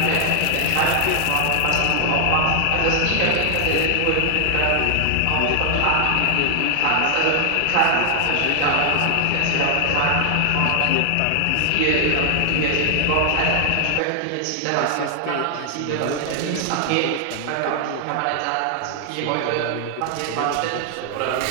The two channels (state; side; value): different; both; correlation 0.00